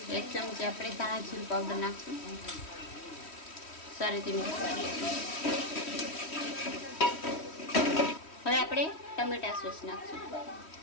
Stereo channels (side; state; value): right; late; 3.1 ms